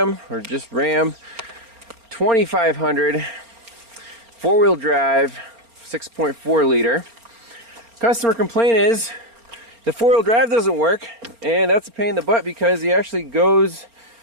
or just Ram 2500 four-wheel drive 6.4 liter. Customer complaint is the four-wheel drive doesn't work, and that's a pain in the butt because he actually goes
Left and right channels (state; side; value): late; left; 4.4 ms